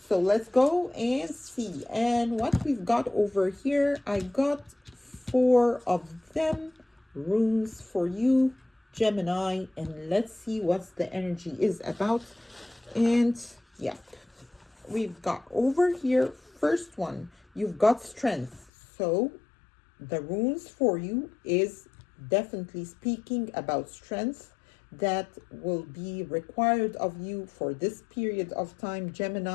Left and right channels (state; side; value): drops out; right; at 18.7 s